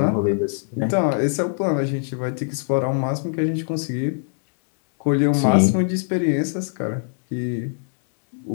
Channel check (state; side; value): silent; right; digital silence